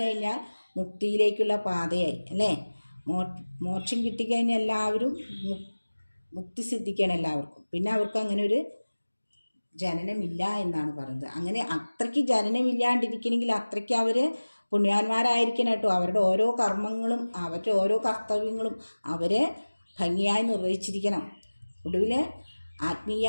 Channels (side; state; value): both; inverted; correlation -1.00